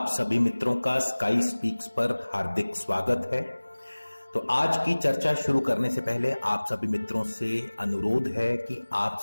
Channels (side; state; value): both; inverted; correlation -1.00